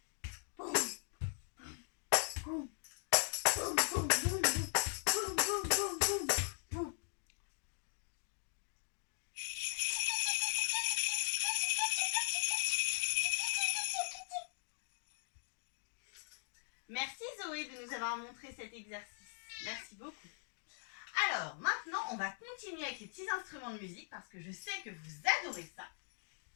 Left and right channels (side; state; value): right; silent; 51 dB below the other